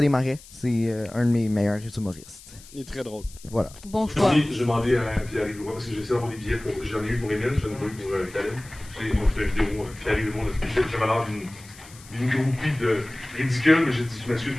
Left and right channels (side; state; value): left; noise; hiss, 21 dB below the sound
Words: Desmarais. C'est un de mes meilleurs humoristes. Il est très drôle. Voilà. Bon choix. J'ai demandé à Pierre-Yves Leroy parce que j'ai essayé d'avoir des billets pour. J'en ai eu pour Emile, j'en ai pas eu pour Caleb. Moi, je fais une vidéo, Pierre-Yves Leroy, j'avais l'air d'une groupie de ridicule, mais j'ai dit, je m'excuse,